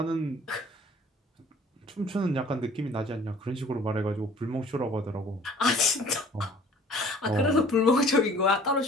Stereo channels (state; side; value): normal; both; correlation 0.52